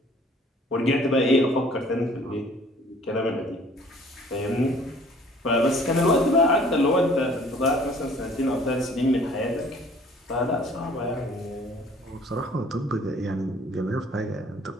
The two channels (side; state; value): both; normal; correlation 0.54